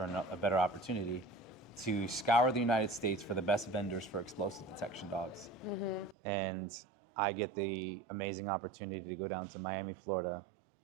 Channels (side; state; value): left; drops out; at 6.2 s